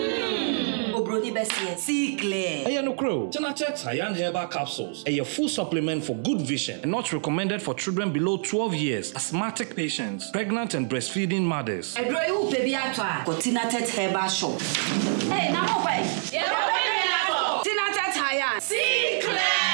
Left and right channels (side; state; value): left; silent; 61 dB below the other